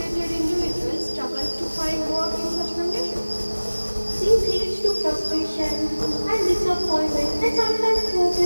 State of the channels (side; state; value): both; inverted; correlation -1.00